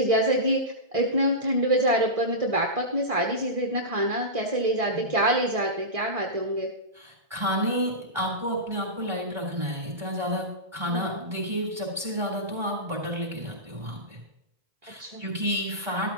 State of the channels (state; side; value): late; left; 1.6 ms